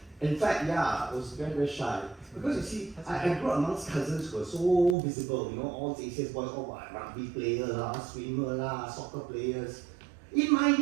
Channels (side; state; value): left; drops out; at 5.0 s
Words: In fact, I was very, very shy. Because you see, I grew up amongst cousins who were so visible, you know, all the ACS boys, all rugby players, swimmer, soccer players. In my